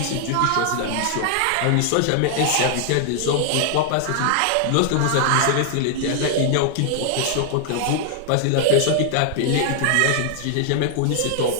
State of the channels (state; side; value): different; both; correlation 0.00